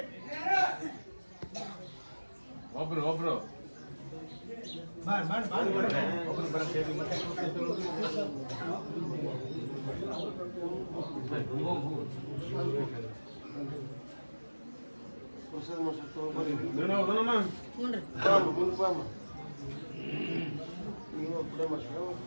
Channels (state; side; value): inverted; both; correlation -1.00